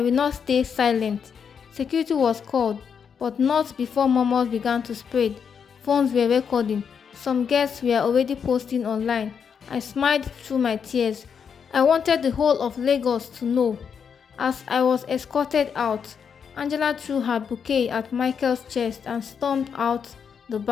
will not stay silent. Security was called, but not before murmurs began to spread. Phones were recording. Some guests were already posting online. I smiled through my tears. I wanted the whole of Lagos to know. As I was escorted out, Angela threw her bouquet at Michael's chest and stormed out the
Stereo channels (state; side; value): quieter; right; 6.9 dB